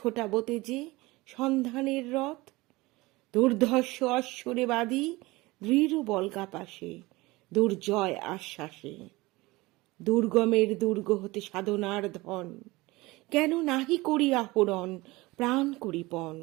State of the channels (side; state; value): left; quieter; 21.3 dB